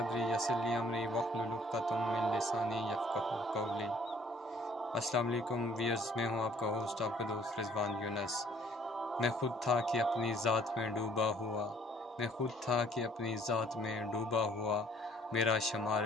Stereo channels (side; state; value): both; normal; correlation 0.58